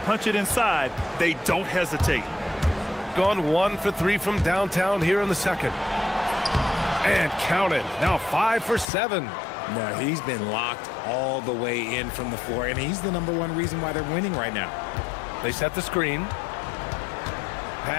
it inside, they don't hesitate. Gone 1 for 3 from downtown here in the second. And count it. Now 5 for 7. No, he's been locked all the way in from the floor, and he's the #1 reason why they're winning right now. They set the screen.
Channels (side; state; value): right; drops out; at 8.8 s